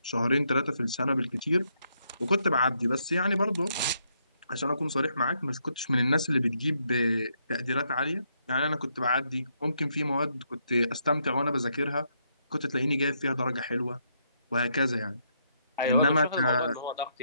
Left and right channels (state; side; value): inverted; both; correlation -0.76